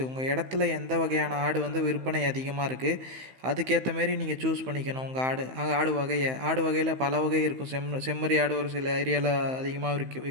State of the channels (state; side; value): late; left; 15 ms